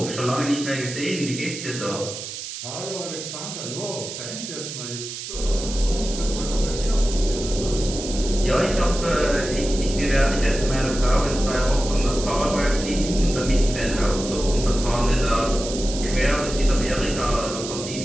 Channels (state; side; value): noise; right; hiss, 8 dB below the sound